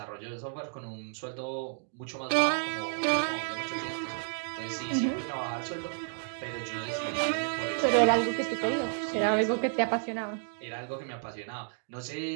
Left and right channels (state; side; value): silent; left; digital silence